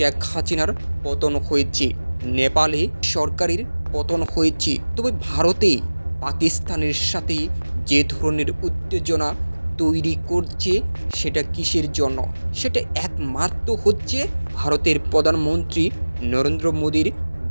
হাসিনার পতন হয়েছে, নেপালে সরকারের পতন হয়েছে। তবে ভারতে পাকিস্তানের সাথে যে ধরনের উত্তেজনা তৈরি করছে সেটা কিসের জন্য? সেটা একমাত্র হচ্ছে ভারতের প্রধানমন্ত্রী নরেন্দ্র মোদীর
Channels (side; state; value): both; inverted; correlation -1.00